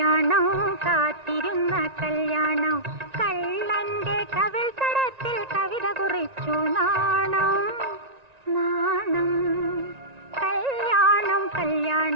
കാത്തിരുന്ന കല്യാണം കള്ളന്റെ കവിൾ തടത്തിൽ കവിത കുറിച്ചു നാണം നാണം. കല്യാണം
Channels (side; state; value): left; late; 1.9 ms